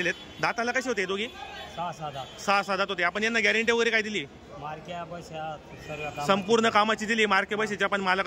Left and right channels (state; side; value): identical; both; correlation 1.00